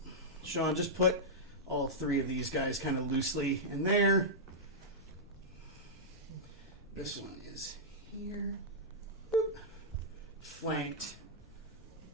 Sean, just put all 3 of these guys kind of loosely in there. This one is here. Boop. Flanked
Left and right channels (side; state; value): left; noise; rumble, 23 dB below the sound